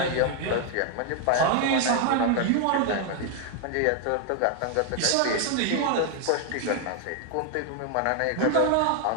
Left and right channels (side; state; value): both; different; correlation 0.00